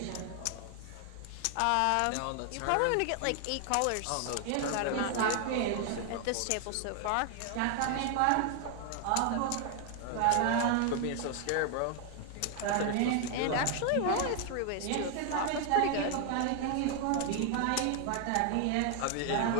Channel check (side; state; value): both; different; correlation 0.00